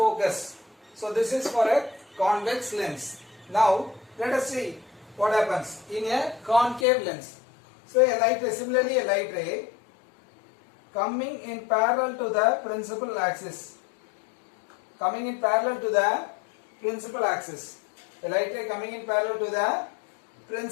So this is for a convex lens. Now let us see what happens in a concave lens. So a light ray, similarly a light ray coming in parallel to the principal axis. Coming in parallel to the principal axis. A light ray coming in parallel to the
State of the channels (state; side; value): drops out; right; at 6.9 s